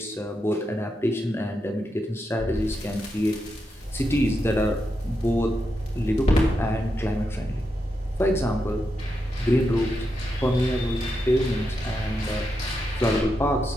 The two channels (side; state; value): both; normal; correlation 0.85